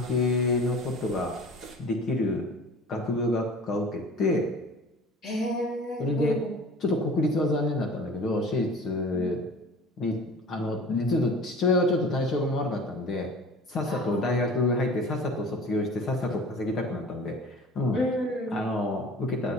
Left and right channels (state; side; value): normal; both; correlation 0.43